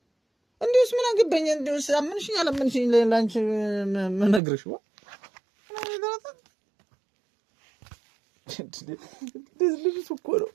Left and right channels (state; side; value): drops out; left; at 4.4 s